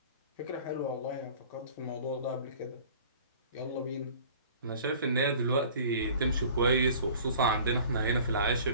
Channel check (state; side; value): inverted; both; correlation -0.47